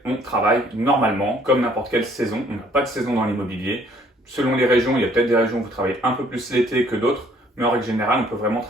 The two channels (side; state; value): both; normal; correlation 0.61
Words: on travaille normalement, comme n'importe quelle saison. On n'a pas de saison dans l'immobilier. Selon les régions, il y a peut-être des régions où vous travaillez un peu plus l'été que d'autres, mais en règle générale, on peut vraiment